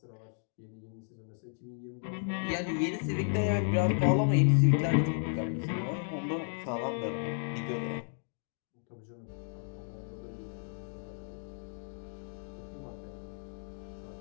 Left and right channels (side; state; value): right; silent; digital silence